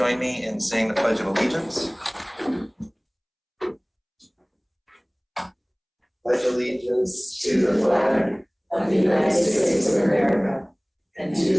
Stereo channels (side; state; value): both; identical; correlation 1.00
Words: me in saying the Pledge of Allegiance. Pledge allegiance to the flag of the United States of America and to